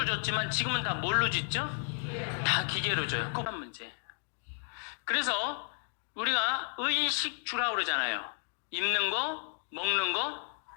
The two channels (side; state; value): right; silent; 56 dB below the other